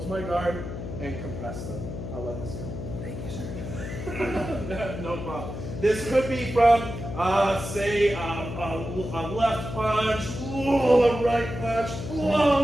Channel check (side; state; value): left; noise; hum, 7 dB below the sound